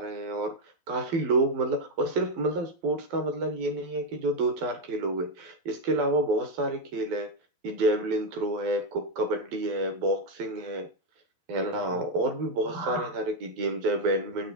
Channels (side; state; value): left; late; 12 ms